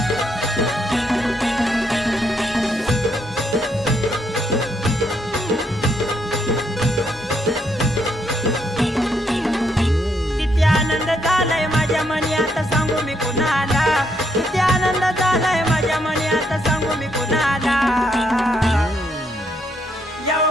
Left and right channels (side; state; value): both; normal; correlation 0.75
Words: सांगू मी कुणाला, किती आनंद झालाय माझ्या मनी आता सांगू मी कुणाला। येऊ